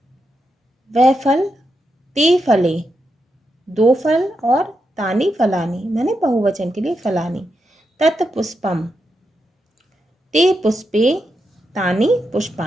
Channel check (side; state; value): both; normal; correlation 0.85